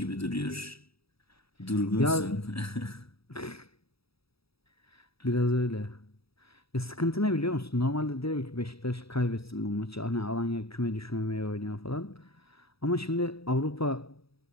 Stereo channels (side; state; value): right; late; 0.77 ms